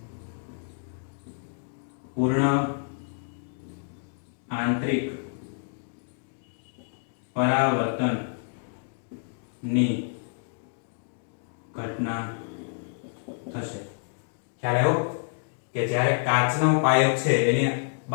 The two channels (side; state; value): right; silent; digital silence